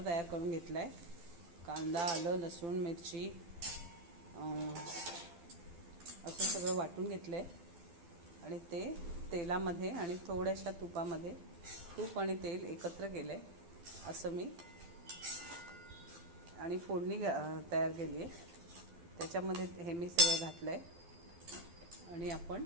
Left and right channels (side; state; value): left; late; 12 ms